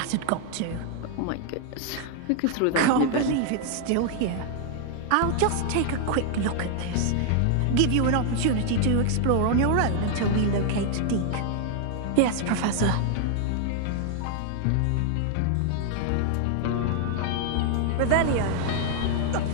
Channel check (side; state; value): both; different; correlation 0.00